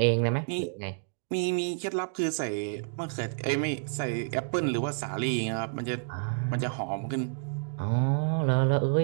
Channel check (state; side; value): silent; left; digital silence